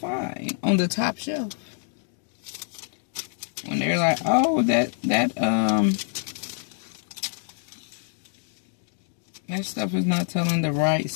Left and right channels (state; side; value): silent; right; digital silence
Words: On the top shelf. When they're like, oh, that stuff is not telling the right